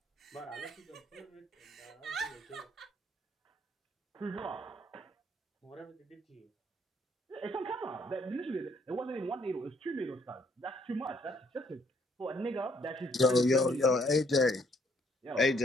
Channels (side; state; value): both; normal; correlation 0.67